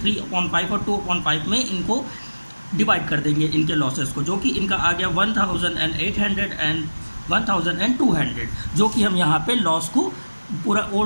3/5 और 2/5 में इनको डिवाइड कर देंगे इनके लॉसेस को, जो कि इनका आ गया 1,800 एंड 1,200, जो कि हम यहाँ पे लॉस को पूरा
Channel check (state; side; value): inverted; both; correlation -1.00